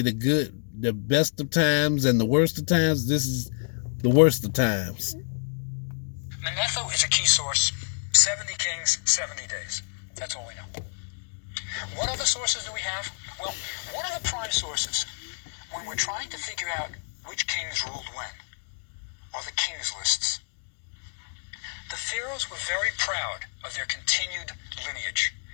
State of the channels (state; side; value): silent; right; 59 dB below the other